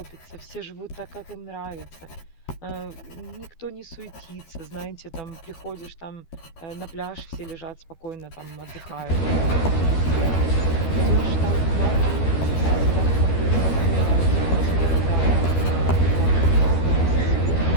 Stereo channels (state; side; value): late; right; 13 ms